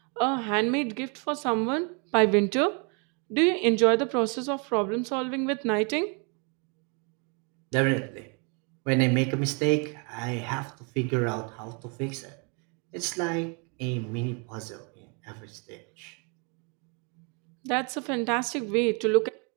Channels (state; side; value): quieter; left; 35.1 dB